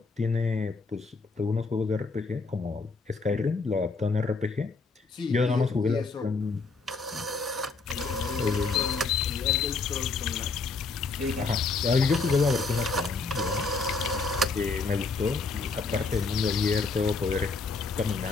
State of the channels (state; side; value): quieter; right; 4.2 dB